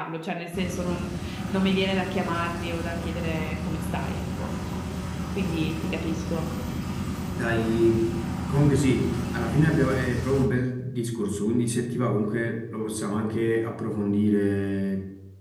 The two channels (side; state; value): both; identical; correlation 1.00